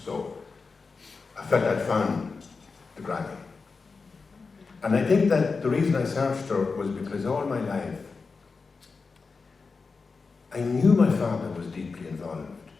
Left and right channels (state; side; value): quieter; right; 4.5 dB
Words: So I felt I'd found the granny. And I think that the reason I searched her was because all my life I knew my father was deeply involved,